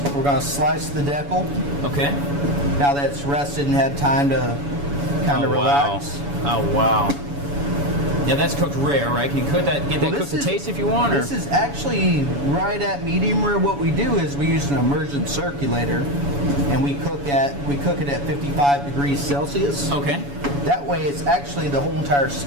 We're going to slice the decal. Okay. Now that it's rested and had time to kind of relax. Wow. Oh, wow. Yeah, that's cooked rare, right? Can you get that cooked to taste if you want? Or? This is actually right at medium rare. What we do is we use an immersion circulator, and we cook it at 55 degrees Celsius. Okay. That way, it's actually the whole entire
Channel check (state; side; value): late; left; 7.1 ms